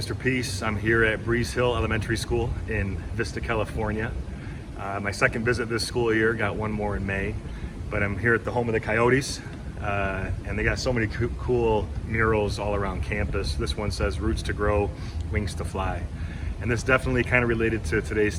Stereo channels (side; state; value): both; identical; correlation 1.00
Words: Peace. I'm here at Breeze Hill Elementary School in Vista, California. My second visit this school year, got one more in May, but I'm here at the home of the Coyotes, and they got so many cool murals all around campus. This one says, "Roots to grow, wings to fly." And this definitely kind of related to today's